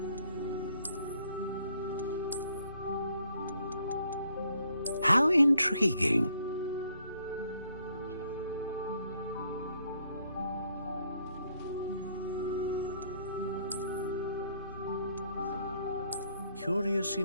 How intriguing. Curious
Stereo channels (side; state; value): both; inverted; correlation -0.68